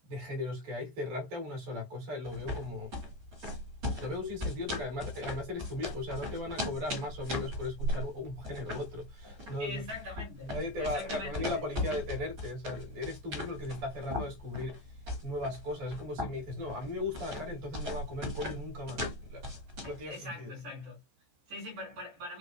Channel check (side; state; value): left; late; 14 ms